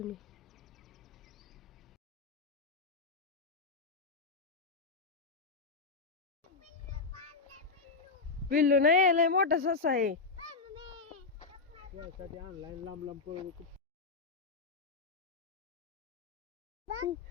पिल्लू नाही, लय मोठा ससा आहे.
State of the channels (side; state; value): right; quieter; 4.3 dB